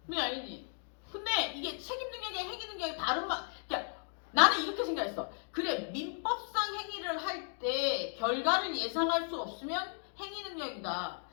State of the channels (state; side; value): silent; right; 54 dB below the other